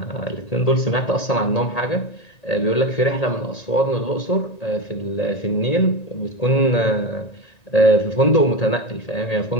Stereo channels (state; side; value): late; right; 1.9 ms